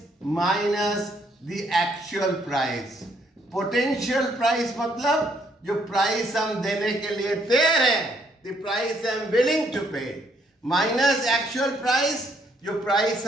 minus the actual price. Potential price मतलब जो प्राइस हम देने के लिए तैयार हैं, the price I am willing to pay, minus actual price, जो प्राइस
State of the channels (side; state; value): both; normal; correlation 0.70